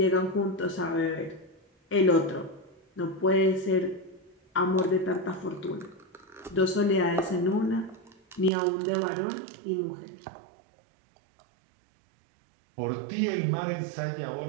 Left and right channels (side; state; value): left; drops out; at 8.5 s